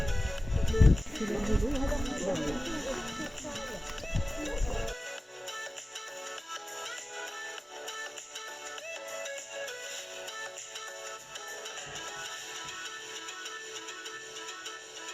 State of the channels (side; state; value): both; normal; correlation 0.97